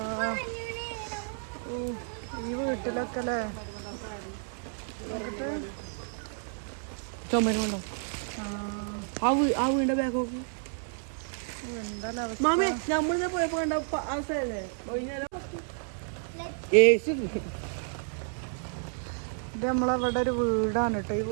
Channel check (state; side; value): silent; left; 57 dB below the other